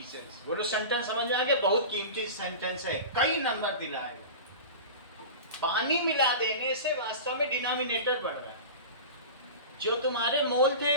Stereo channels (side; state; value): both; inverted; correlation -0.31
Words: बोलो sentence समझ में आ गया? बहुत कीमती सेंटेंस है, कई नंबर दिलाए। पानी मिला देने से वास्तव में डिनोमिनेटर बढ़ रहा है। जो तुम्हारे मोल थे